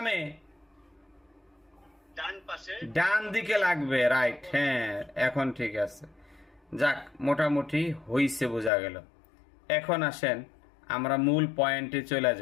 ডান পাশে। ডান দিকে লাগবে, রাইট। হ্যাঁ, এখন ঠিক আছে। যাক, মোটামুটি হইছে, বোঝা গেল। এখন আসেন আমরা মূল পয়েন্টে চলে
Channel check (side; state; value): right; drops out; at 8.7 s